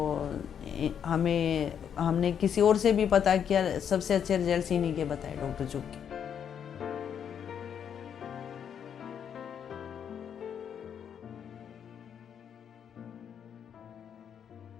हमने किसी और से भी पता किया, सबसे अच्छे रिजल्ट इन्हीं के बताए डॉक्टर चुग के।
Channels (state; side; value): quieter; right; 8.3 dB